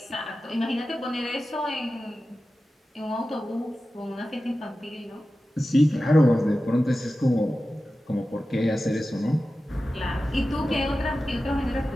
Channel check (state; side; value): normal; both; correlation 0.94